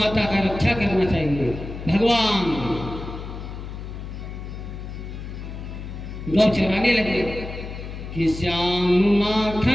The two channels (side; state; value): left; noise; hum, 9 dB below the sound